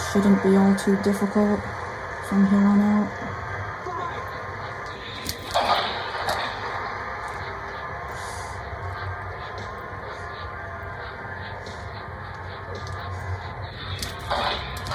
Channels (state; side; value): identical; both; correlation 1.00